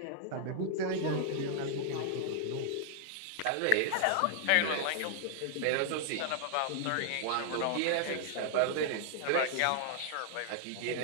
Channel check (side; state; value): both; different; correlation 0.00